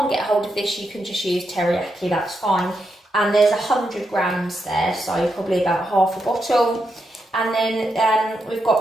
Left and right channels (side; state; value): both; normal; correlation 0.83